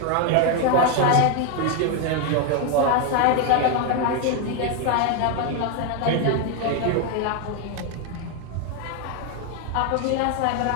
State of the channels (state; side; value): different; both; correlation 0.01